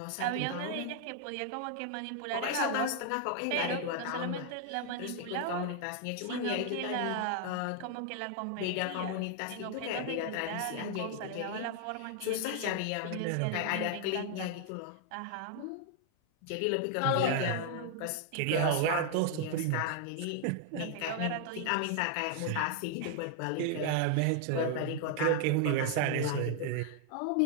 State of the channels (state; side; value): different; both; correlation 0.00